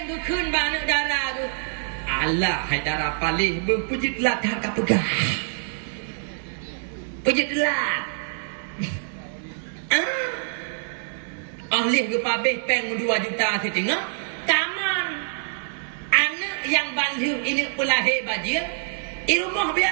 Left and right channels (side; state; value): left; silent; 59 dB below the other